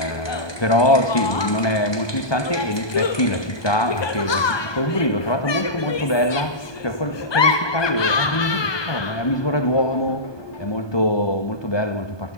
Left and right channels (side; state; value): right; late; 1.2 ms